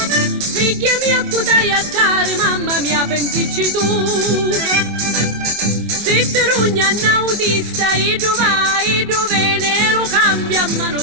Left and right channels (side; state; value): left; late; 24 ms